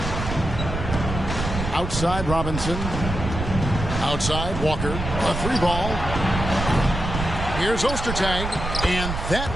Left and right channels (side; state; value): right; noise; rumble, 5 dB below the sound